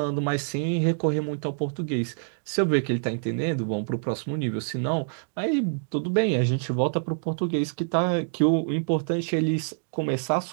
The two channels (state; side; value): silent; left; digital silence